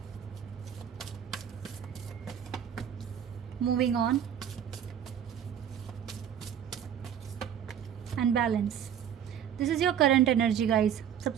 Moving on and balance. This is your current energy guys.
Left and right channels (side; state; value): left; quieter; 9.1 dB